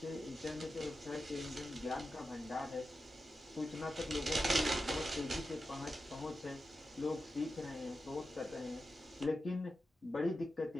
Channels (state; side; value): normal; both; correlation 0.90